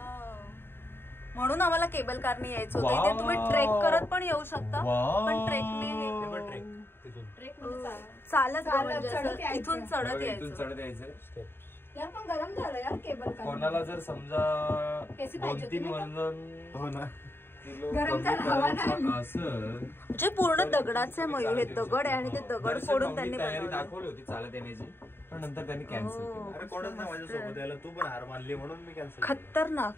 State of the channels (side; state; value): right; late; 0.11 ms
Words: म्हणून आम्हाला केबल कारने यायचं होतं. इथे तुम्ही ट्रेक करत पण येऊ शकता, पण ट्रेकने चालत इथून चढत यायचं. यार पण गरम झालं यार केबल कार. कोणाला जर समजा 2-3 वजन हो ना म्हणजे पूर्ण दगडाचे मयूर हे दगड आहे आणि ते दगड फोडून त्यांनी तयारी दाखवली होती चालत येण्याची, पण नंतर त्यांनी कॅन्सल केलं. अरे कोणच नाही माझ्यासोबत यायला, तू पण हार मानली म्हणून मी कॅन्सल. खतरनाक.